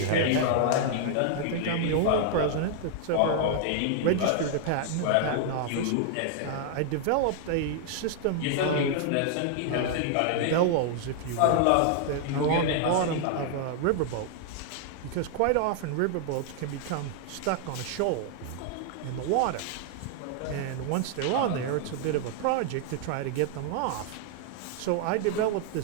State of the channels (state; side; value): different; both; correlation 0.00